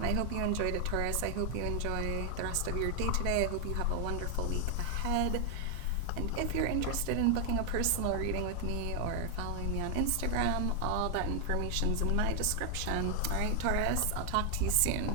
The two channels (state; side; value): different; both; correlation 0.00